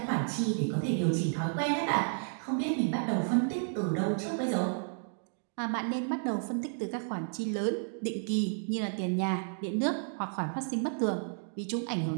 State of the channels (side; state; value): left; silent; digital silence